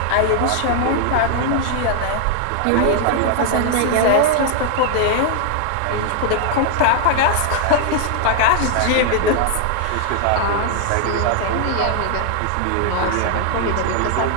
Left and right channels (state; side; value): different; both; correlation 0.00